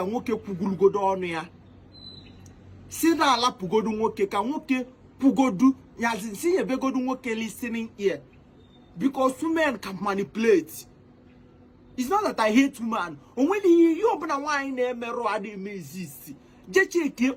nwoke kwugulugodo ọnụ ya. Si na alapụgodu nwoke ka nwoke pugodu yazi si yebegodu nwoke listening ear. Because women can manipulate. It's not that I hate women. Only you open a wine mero adi exist. Just check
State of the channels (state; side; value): identical; both; correlation 1.00